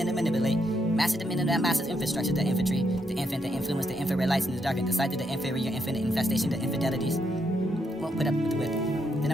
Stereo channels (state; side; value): normal; both; correlation 0.77